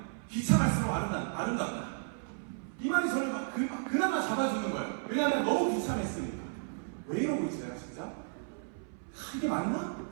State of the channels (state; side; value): silent; left; 55 dB below the other